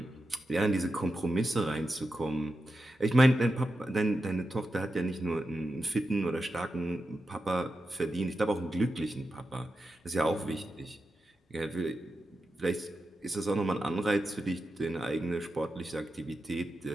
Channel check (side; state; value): both; normal; correlation 0.90